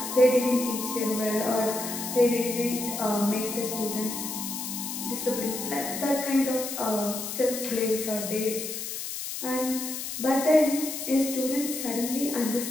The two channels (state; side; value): noise; left; hiss, 6 dB below the sound